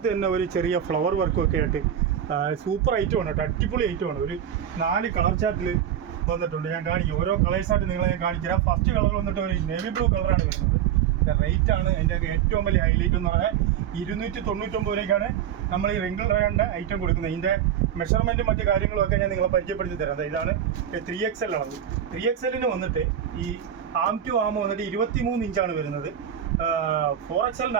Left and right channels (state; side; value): quieter; left; 9.7 dB